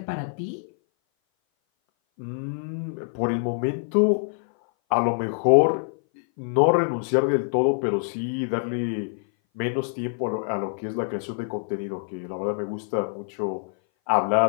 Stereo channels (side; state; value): right; silent; 58 dB below the other